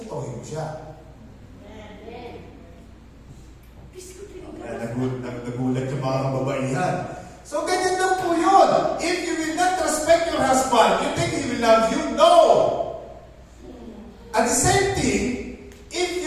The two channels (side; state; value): both; identical; correlation 1.00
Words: mo siya. Nagulat yung mga kababaihan. So, ganyan lang po yun. If you will not respect your husband, you think he will love you? No! At the same thing, if